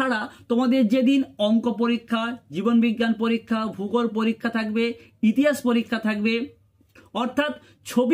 তোমাদের যেদিন অঙ্ক পরীক্ষা, জীবন বিজ্ঞান পরীক্ষা, ভূগোল পরীক্ষা থাকবে, ইতিহাস পরীক্ষা থাকবে, অর্থাৎ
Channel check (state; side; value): identical; both; correlation 1.00